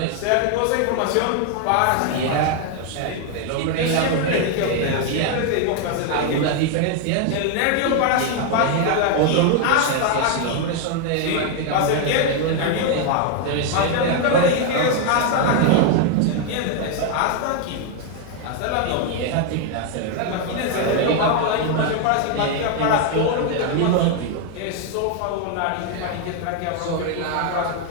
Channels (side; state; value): both; different; correlation 0.01